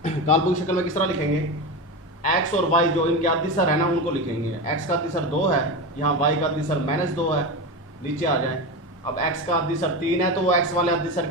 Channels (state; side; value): normal; both; correlation 0.21